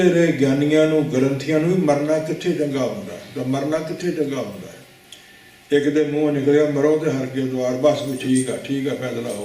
ਰਹੇ ਗਿਆਨੀਆਂ ਨੂੰ, ਗ੍ਰੰਥੀਆਂ ਨੂੰ ਵੀ ਮਰਨਾ ਕਿੱਥੇ ਚੰਗਾ ਹੁੰਦਾ, ਤਾਂ ਮਰਨਾ ਕਿੱਥੇ ਚੰਗਾ ਹੁੰਦਾ ਹੈ। ਇੱਕ ਦੇ ਮੂੰਹ ਨਿਕਲਿਆ ਮਰੋ ਤੇ ਹਰ ਕੇ ਦਵਾਰ, ਬਸ ਵੀ ਠੀਕ ਆ ਫੈਸਲਾ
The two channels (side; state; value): both; identical; correlation 1.00